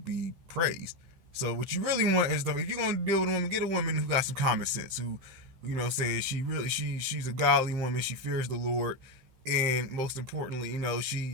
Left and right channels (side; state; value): left; late; 15 ms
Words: praised. So what you really want is, if you're gonna deal with a woman, get a woman who got some common sense, who, saying she's a godly woman, she fears the Lord. And most importantly,